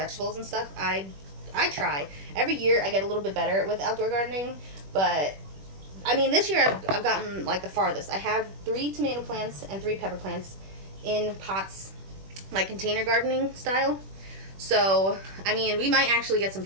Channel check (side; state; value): left; late; 21 ms